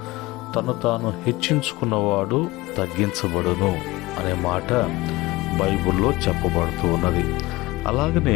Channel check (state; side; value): quieter; right; 20.3 dB